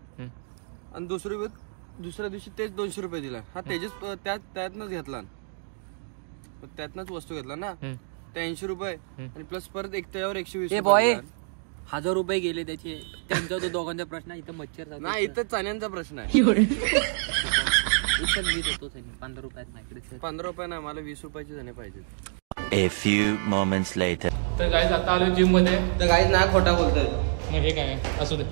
आणि दुसऱ्या दिवशी तेच 200 रुपये दिला. हा त्यातनच घेतला. त्यातनच वस्तू घेतला ना. ते 80 रुपये आणि प्लस परत त्याच्यावर 120 रुपये. 1000 रुपये गेले त्याचे. त्यांचा तो दोघांचा प्रश्न आहे. इथं मच्छर नाही इथं चण्यांचा प्रश्न आहे. मी देतो 15 रुपयात माझ्याकडे. 15 रुपये नाही मला 20 रुपयाचे चणे पाहिजे. A few moments later. तर गाईज आता आलो जिम मध्ये. तर गाईज नाही खोटा बोलतोय. मग हे काय आहे असू दे.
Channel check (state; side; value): silent; left; digital silence